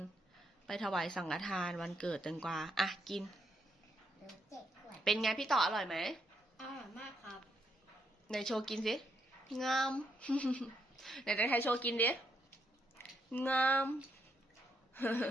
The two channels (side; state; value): both; normal; correlation 0.76